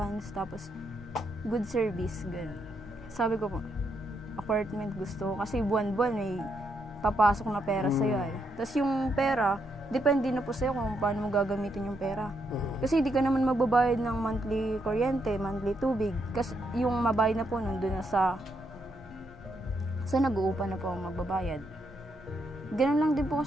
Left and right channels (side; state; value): both; normal; correlation 0.78